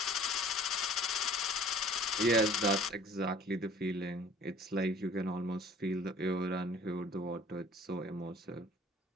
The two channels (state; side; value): normal; both; correlation 0.50